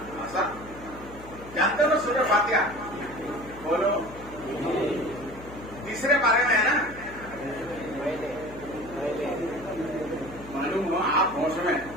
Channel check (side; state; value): left; noise; hum, 16 dB below the sound